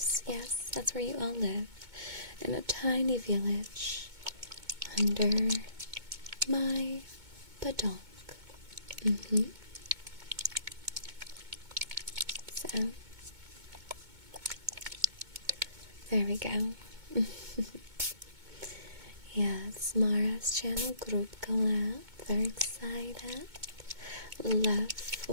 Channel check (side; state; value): left; late; 2.2 ms